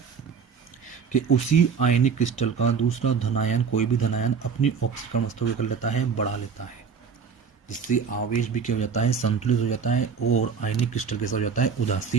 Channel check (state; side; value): quieter; left; 6.2 dB